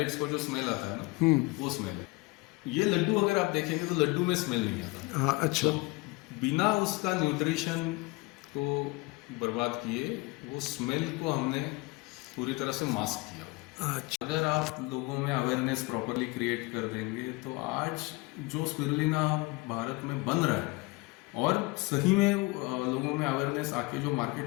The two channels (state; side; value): quieter; right; 24.3 dB